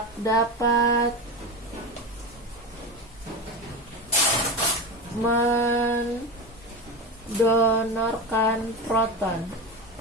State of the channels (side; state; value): both; normal; correlation 0.22